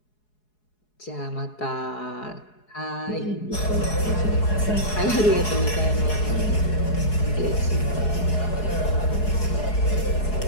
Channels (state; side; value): late; right; 4.7 ms